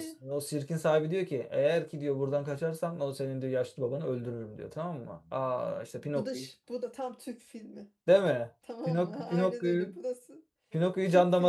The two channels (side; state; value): both; identical; correlation 1.00